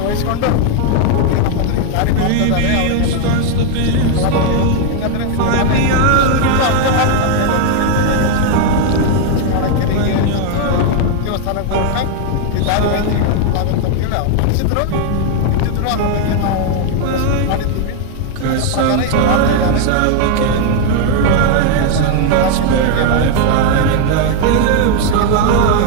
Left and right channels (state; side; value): different; both; correlation 0.00